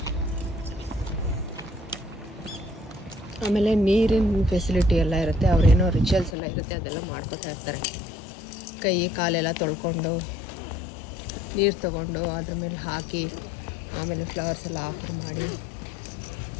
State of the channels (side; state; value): right; drops out; at 6.4 s